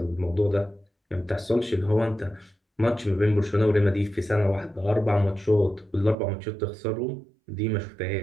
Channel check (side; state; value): left; drops out; at 6.2 s